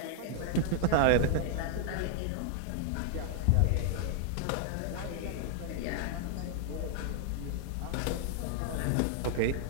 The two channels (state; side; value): different; both; correlation 0.00